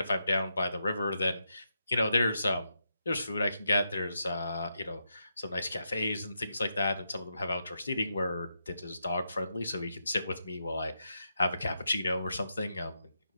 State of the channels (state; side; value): inverted; both; correlation -0.84